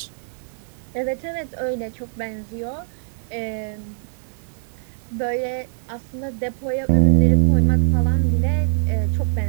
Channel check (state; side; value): silent; left; 64 dB below the other